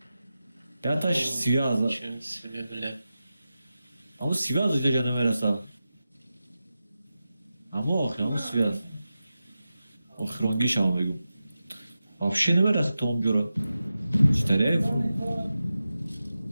Ya taş siyah Çün sebeple. ama siyah da canım veresa. Ama o siyah. O hrongi şamı bugün. Вообще не верес Том Джора. Стареев.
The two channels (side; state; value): both; inverted; correlation -0.92